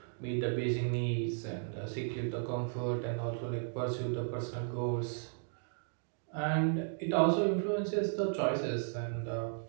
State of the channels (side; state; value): left; silent; digital silence